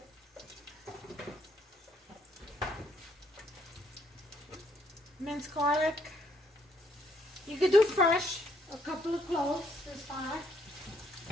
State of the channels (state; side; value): normal; both; correlation 0.70